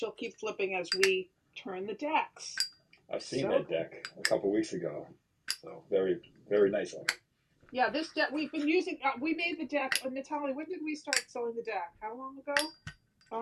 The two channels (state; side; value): identical; both; correlation 1.00